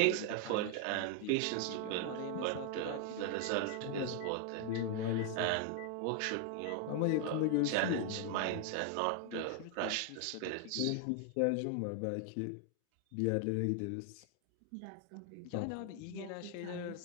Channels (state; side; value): different; both; correlation 0.00